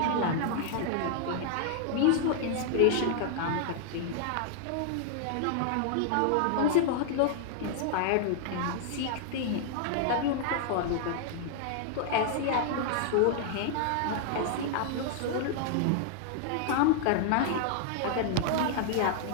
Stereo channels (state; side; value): different; both; correlation -0.01